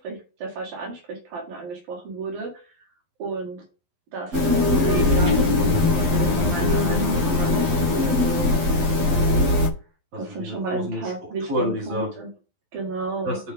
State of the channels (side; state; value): left; late; 11 ms